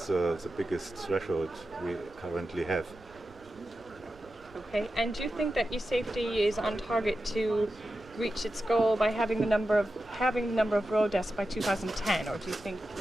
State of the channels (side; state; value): right; noise; rumble, 25 dB below the sound